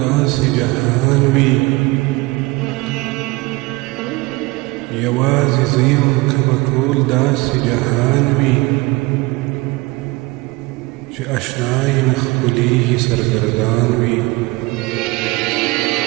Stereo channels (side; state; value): left; quieter; 23.0 dB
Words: داسې جهان وي، یوازې زه یم که به ټول داسې جهان وي، چې اشنا یې نه ښکلېږي سرګردان وي.